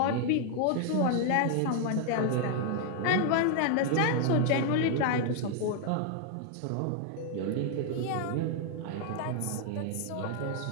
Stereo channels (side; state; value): both; different; correlation 0.00